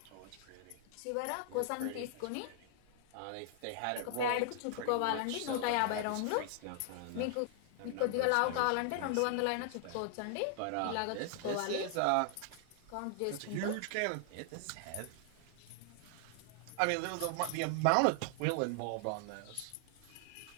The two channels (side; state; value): both; different; correlation 0.00